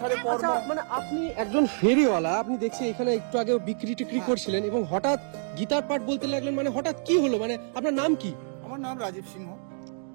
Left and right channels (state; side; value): silent; left; digital silence